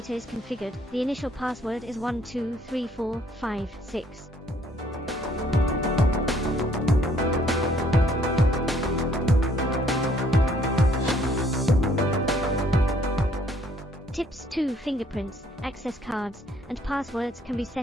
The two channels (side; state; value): both; normal; correlation 0.63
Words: is configured, the initial password is 123456. Tips 2. Fingerprints, access cards, and passwords can be